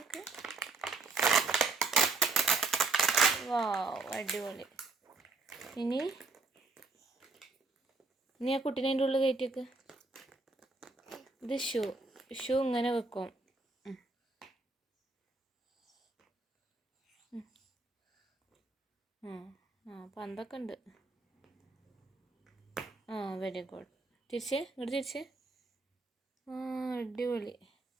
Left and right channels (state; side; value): quieter; left; 3.8 dB